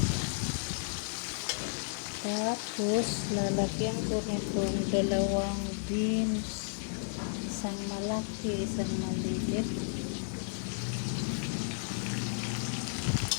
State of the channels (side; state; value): right; silent; digital silence